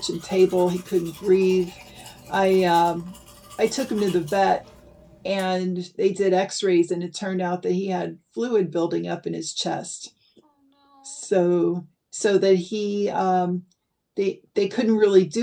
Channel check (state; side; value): identical; both; correlation 1.00